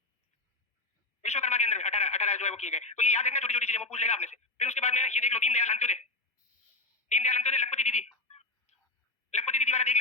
विश्वकर्मा के अंदर 18 जो है वो किए गए। तो ये याद रखना, छोटी छोटी चीजें वो पूछ लेगा आपने से। फिर उसके बाद में ये देख लो दीनदयाल अंत्योदय, दीनदयाल अंत्योदय लखपति दीदी, लखपति दीदी वाला देख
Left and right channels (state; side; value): quieter; right; 3.0 dB